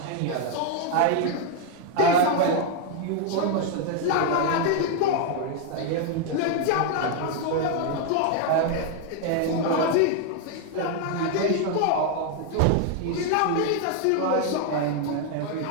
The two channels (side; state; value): both; different; correlation 0.00